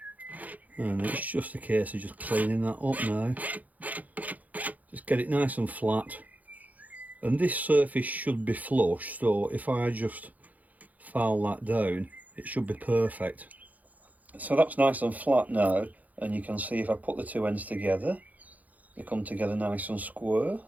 And it's just a case of just cleaning that up now. Just get it nice and flat, and this surface should be flush, so if I just file that down it should be perfect. So that's nice and flat now, and you can see if I put the two ends together they come together nice and square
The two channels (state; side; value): late; left; 0.078 ms